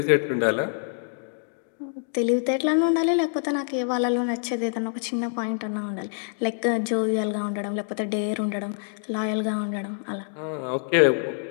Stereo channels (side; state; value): right; silent; digital silence